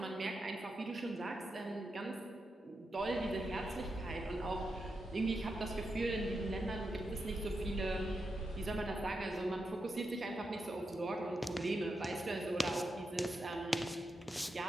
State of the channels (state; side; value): normal; both; correlation 0.86